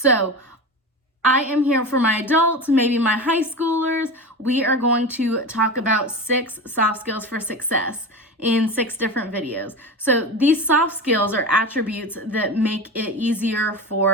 I am here for my adults, maybe my high schoolers. We are going to talk about 6 soft skills for success in 6 different videos. So these soft skills are attributes that make it easier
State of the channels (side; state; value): both; normal; correlation 0.27